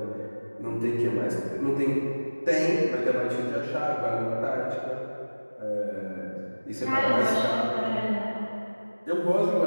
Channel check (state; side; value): inverted; both; correlation -1.00